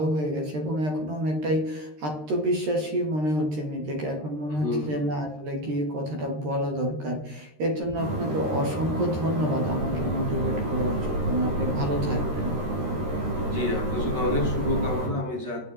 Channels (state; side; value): late; left; 13 ms